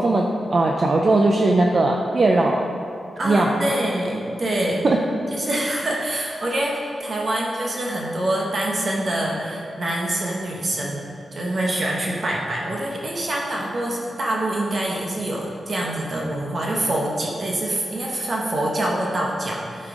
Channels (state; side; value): normal; both; correlation 0.90